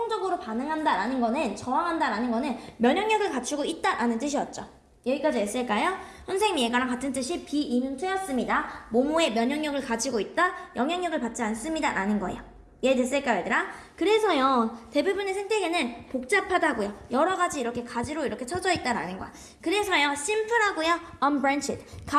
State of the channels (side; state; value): both; identical; correlation 1.00